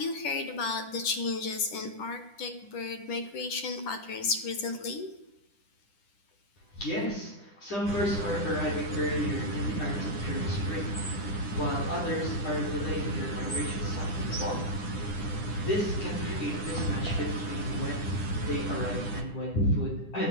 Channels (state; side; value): late; right; 10 ms